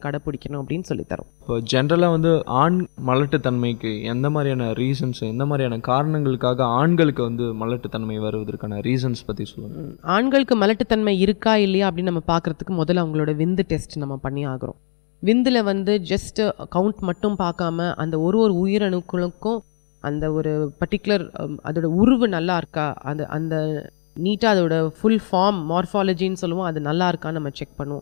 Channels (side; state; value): right; silent; digital silence